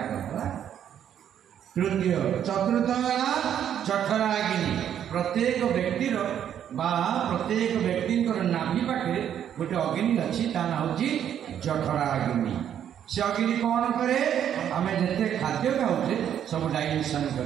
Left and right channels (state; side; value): quieter; left; 9.6 dB